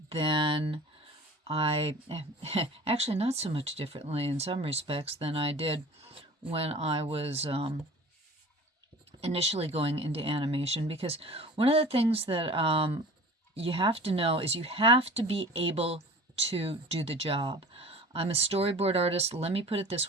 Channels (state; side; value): normal; both; correlation 0.42